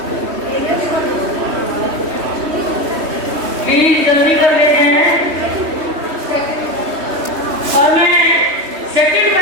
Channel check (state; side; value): late; left; 3.2 ms